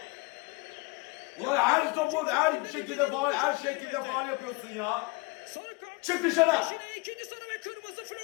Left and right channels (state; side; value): quieter; right; 25.4 dB